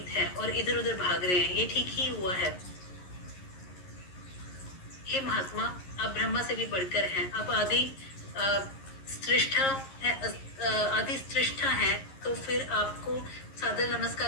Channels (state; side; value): late; right; 11 ms